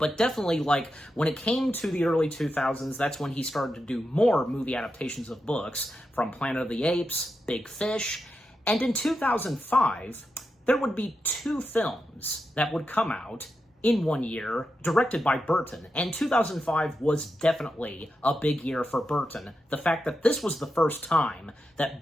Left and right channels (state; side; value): normal; both; correlation 0.88